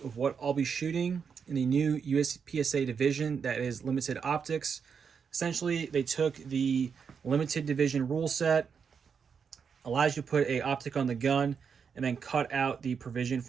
of what I'll be shooting in the new USPSA division that is limited optics. Essentially, they took the limited division rule set, allows you to put a optic on the gun, and then cut out the provision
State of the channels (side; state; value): left; quieter; 6.4 dB